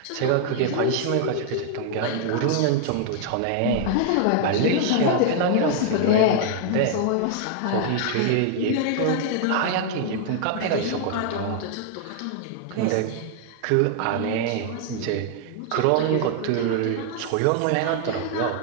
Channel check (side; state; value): both; different; correlation 0.00